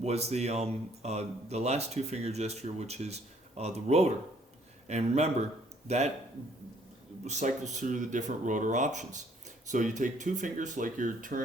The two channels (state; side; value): normal; both; correlation 0.62